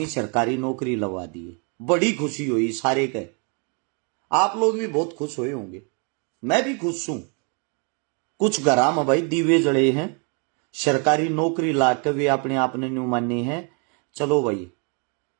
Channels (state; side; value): quieter; left; 37.4 dB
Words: सरकारी नौकरी लगवा दिए। बड़ी खुशी हुई सारे के। आप लोग भी बहुत खुश हुए होंगे, मैं भी खुश हूं। कुछ घरा में भाई दीवे जड़े हैं, सरकारी नौकरी लाकर वे अपने आप ने न्यू माने हैं, चलो भाई